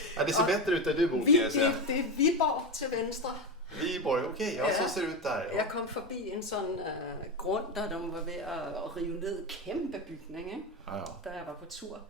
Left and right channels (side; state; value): both; normal; correlation 0.16